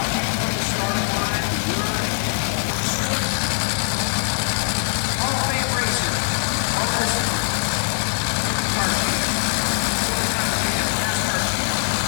from the starting line, learning. Hall of Fame racer, all horsepower. Supercar champ, silver-time champ, NASCAR champ.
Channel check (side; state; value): right; silent; 64 dB below the other